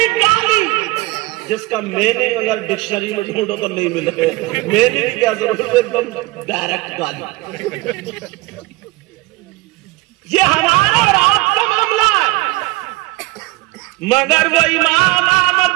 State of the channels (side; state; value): left; quieter; 21.4 dB